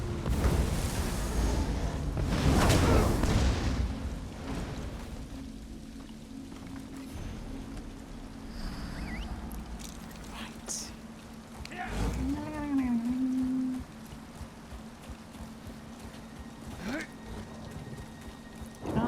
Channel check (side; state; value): both; identical; correlation 1.00